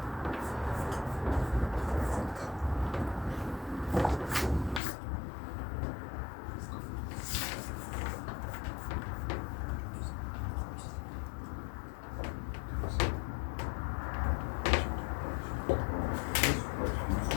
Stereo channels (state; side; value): drops out; right; at 4.8 s